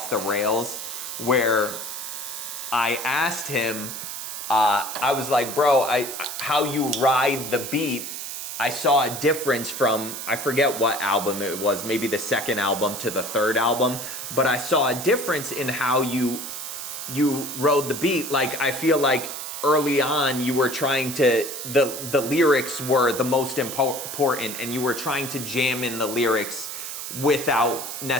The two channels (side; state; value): right; noise; hiss, 7 dB below the sound